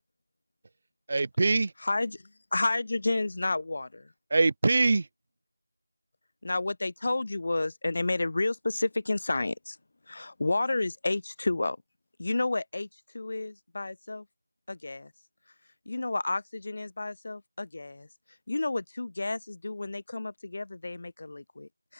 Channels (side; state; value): both; inverted; correlation -0.96